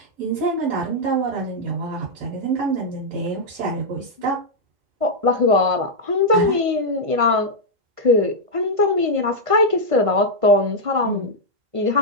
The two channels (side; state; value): left; late; 1.5 ms